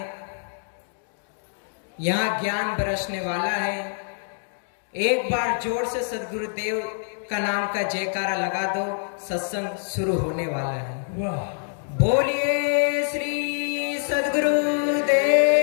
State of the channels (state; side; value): silent; right; digital silence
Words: यहाँ ज्ञान बरसने वाला है। एक बार जोर से सद्गुरु देव का नाम का जयकारा लगा दो, सत्संग शुरू होने वाला है। वाह, बोलिए श्री सद्गुरु